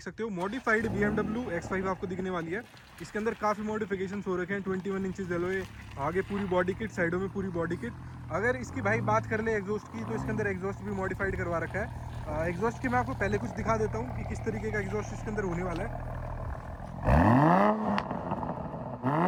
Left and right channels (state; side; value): identical; both; correlation 1.00